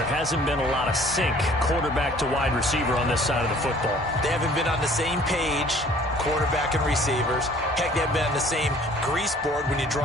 hasn't been a lot of sync quarterback to wide receiver on this side of the football. They haven't been on the same page, quarterback and receivers. Heck, they haven't been on the same grease board when you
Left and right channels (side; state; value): both; normal; correlation 0.54